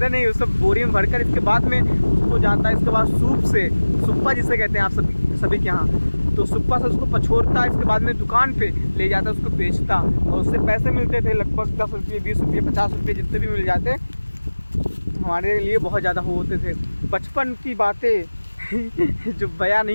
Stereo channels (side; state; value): both; inverted; correlation -1.00